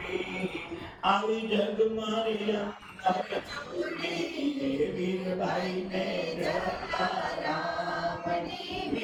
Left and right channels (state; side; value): identical; both; correlation 1.00